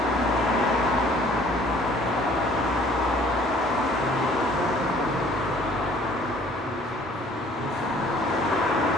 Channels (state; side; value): normal; both; correlation 0.56